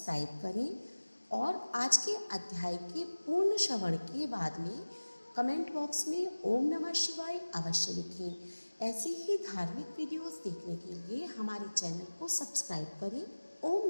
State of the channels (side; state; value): both; inverted; correlation -1.00